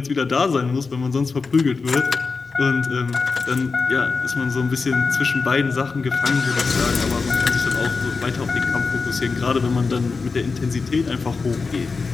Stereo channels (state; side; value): quieter; right; 4.5 dB